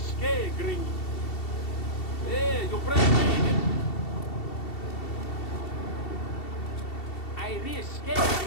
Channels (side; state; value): right; late; 2.7 ms